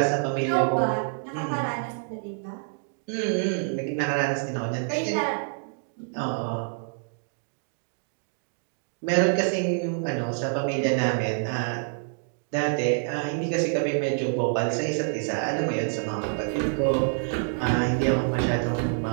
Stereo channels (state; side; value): silent; left; digital silence